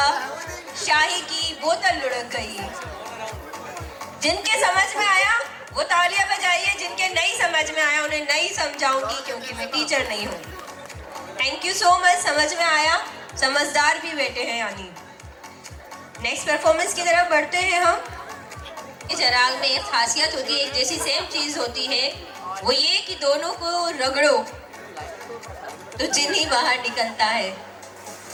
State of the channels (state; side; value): identical; both; correlation 1.00